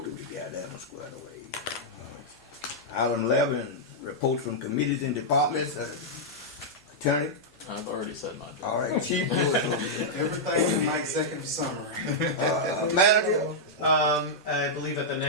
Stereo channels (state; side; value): normal; both; correlation -0.07